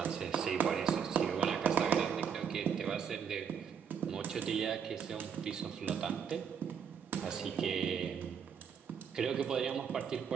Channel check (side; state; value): left; quieter; 7.3 dB